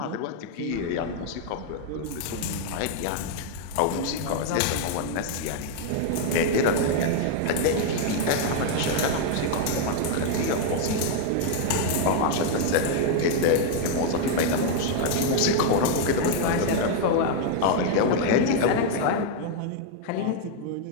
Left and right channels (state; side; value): different; both; correlation 0.00